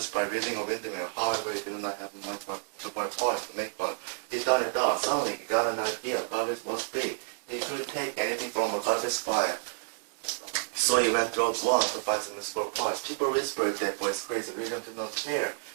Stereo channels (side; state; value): left; silent; digital silence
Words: by reading a windmill. However, he did not have much to buy toys to make one. He thought it out. Suddenly, he got an idea. Garbage was free. He could take anything from a garbage pile. So he went through one to find some useful parts. People whispered that boy is crazy. William did not care.